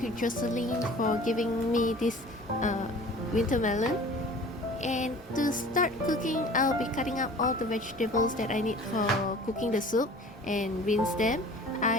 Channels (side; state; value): both; normal; correlation 0.45